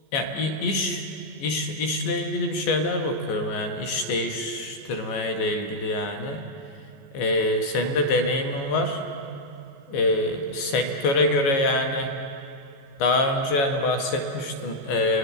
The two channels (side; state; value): right; late; 15 ms